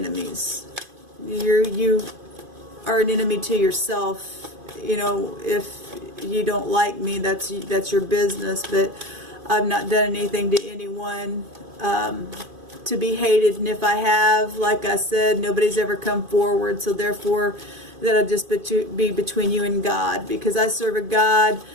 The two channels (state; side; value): late; left; 2.5 ms